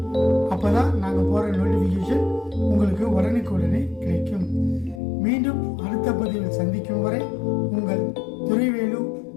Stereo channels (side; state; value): right; drops out; at 5.0 s